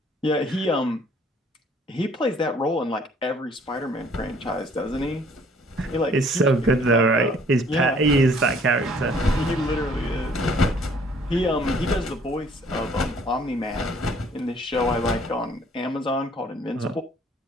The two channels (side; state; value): both; normal; correlation 0.59